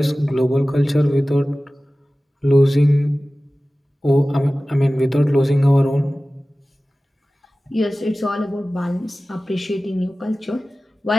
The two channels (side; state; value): both; normal; correlation 0.97